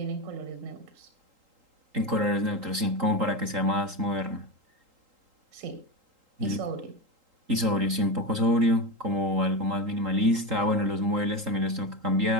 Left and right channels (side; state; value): left; late; 3.8 ms